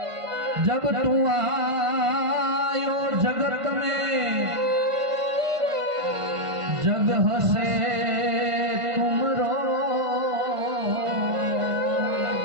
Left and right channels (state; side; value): late; left; 1.5 ms